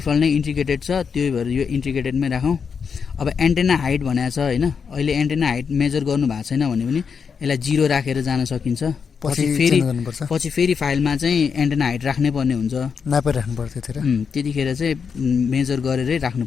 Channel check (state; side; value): quieter; right; 6.2 dB